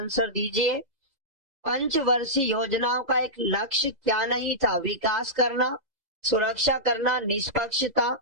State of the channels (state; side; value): late; left; 2.0 ms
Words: दीजिए। पंचवर्षीय योजनाओं का एक लक्ष्य क्या नहीं था, विकास करना, सुरक्षा करना, निष्पक्षता,